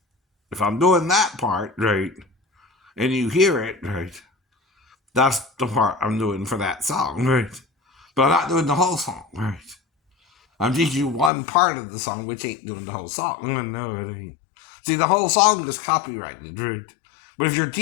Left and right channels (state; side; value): drops out; right; at 11.3 s